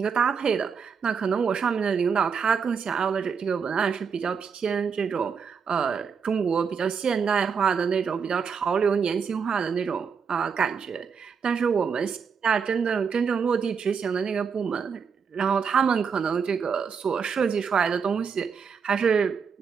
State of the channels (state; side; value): quieter; left; 6.2 dB